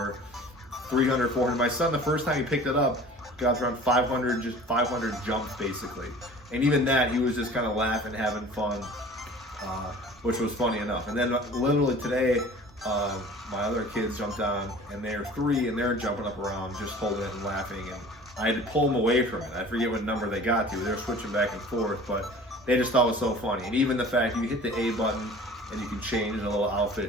300, 400. My son, the first time he picked it up, got around 500, just 500 jumps basically. And even that, he was just kind of laughing, having fun, which was funny enough. And then literally today, my other kids jumped on, and they're 3, and they're jumping up around, just holding it and laughing. And I had to pull them away from it. I forget what number they got to. They were switching back and forth, but they just thought it was so funny. And even the fact you hit the A button and you can change the little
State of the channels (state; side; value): normal; both; correlation 0.44